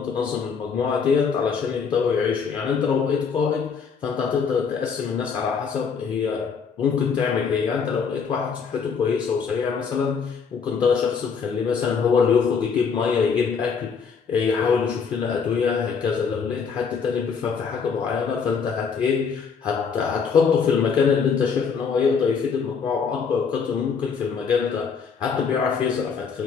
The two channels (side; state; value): right; quieter; 6.0 dB